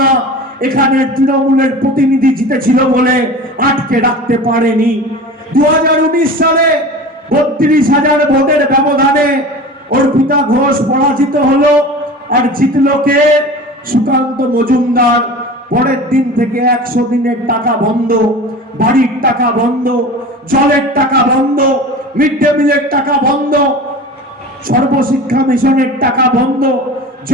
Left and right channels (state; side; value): normal; both; correlation 0.35